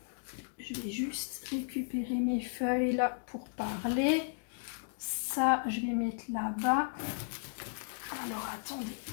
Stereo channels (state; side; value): silent; right; digital silence